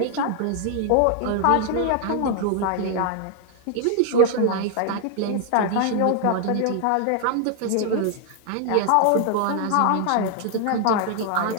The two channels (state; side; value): different; both; correlation 0.00